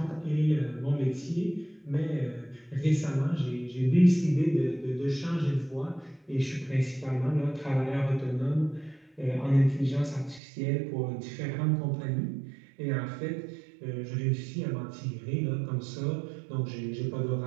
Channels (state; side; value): drops out; left; at 10.4 s